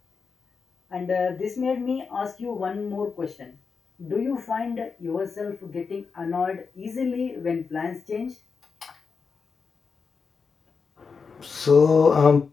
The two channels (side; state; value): right; quieter; 5.3 dB